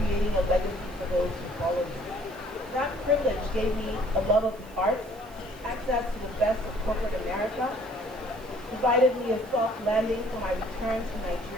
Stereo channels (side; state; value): right; noise; hiss, 26 dB below the sound